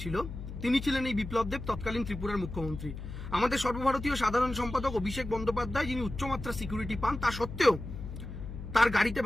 তিনি ছিলেন এই বিপ্লব দেব, তৎকালীন ত্রিপুরার মুখ্যমন্ত্রী। আমাদের সর্বভারতীয় সাধারণ সম্পাদক অভিষেক বন্দ্যোপাধ্যায়, যিনি উচ্চমাত্রা সিকিউরিটি পান, তা সত্ত্বেও তার গাড়িতে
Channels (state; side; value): noise; left; hum, 9 dB below the sound